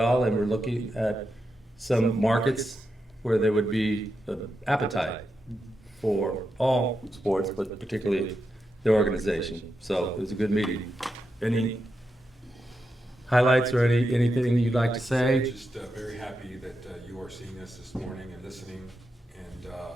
And we're looking at some markets where there would be appetite for all sports, but particularly the organization. So it was a good meeting. Any highlights or anything you'd like to say? Just very happy that you are seeing us this morning and listening. And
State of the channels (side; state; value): both; normal; correlation 0.86